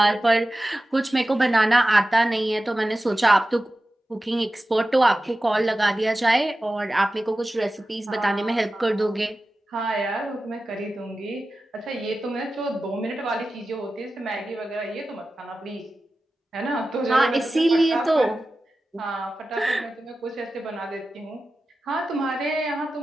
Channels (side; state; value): both; normal; correlation 0.94